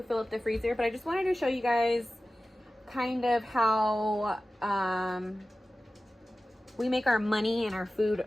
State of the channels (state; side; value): normal; both; correlation 0.96